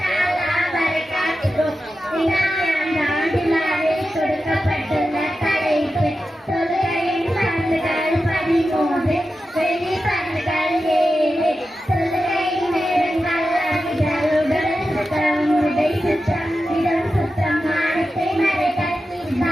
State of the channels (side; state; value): both; normal; correlation 0.91